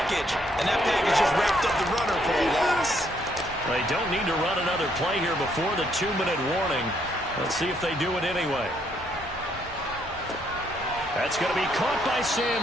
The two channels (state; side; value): normal; both; correlation 0.71